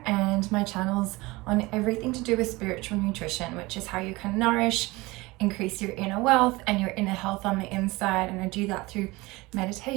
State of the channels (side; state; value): left; quieter; 21.9 dB